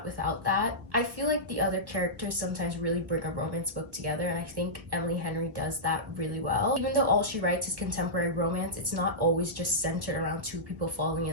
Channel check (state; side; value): late; left; 1.5 ms